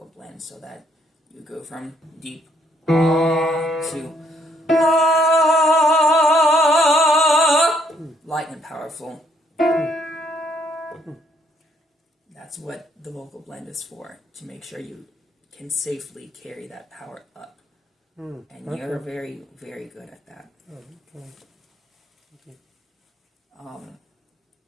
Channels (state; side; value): normal; both; correlation 0.69